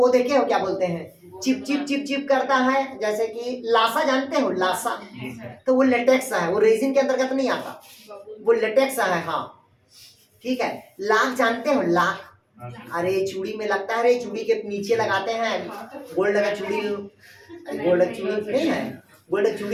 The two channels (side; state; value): both; identical; correlation 1.00